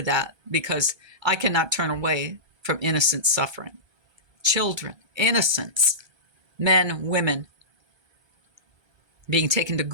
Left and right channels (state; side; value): late; left; 1.3 ms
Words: that because I cannot turn away from innocent suffering. Children, innocents, men, women, being taken to